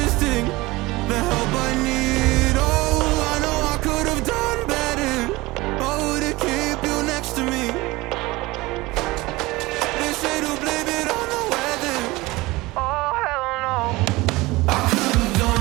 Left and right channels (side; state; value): left; quieter; 21.1 dB